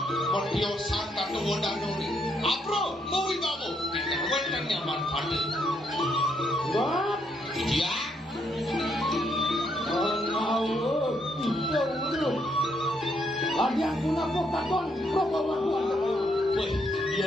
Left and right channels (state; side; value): normal; both; correlation 0.74